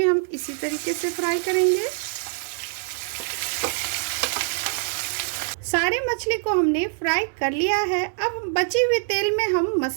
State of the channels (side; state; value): left; silent; digital silence